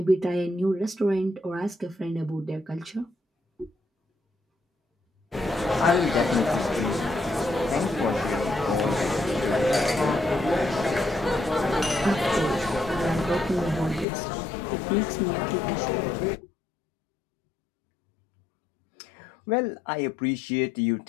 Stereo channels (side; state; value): right; drops out; at 14.1 s